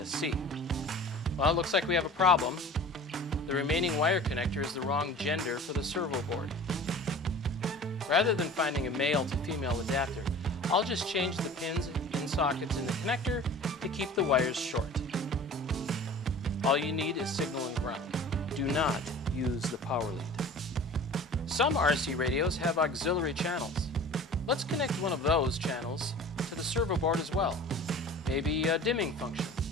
Well, it looks like we have a problem. The remaining wire connector is the wrong gender for the servo board. Rather than finding a male to female adapter, I'll just change the pins in sockets in the connector to keep the wires short. All you need is signal and ground. Do not use the power lead. Some RC radios have auxiliary channels. Let's connect one of those channels to the servo board as well. Maybe a dimming function.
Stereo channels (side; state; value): both; normal; correlation 0.41